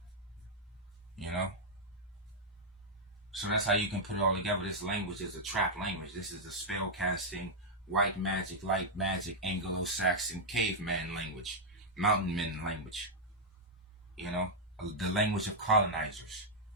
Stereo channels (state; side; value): normal; both; correlation -0.04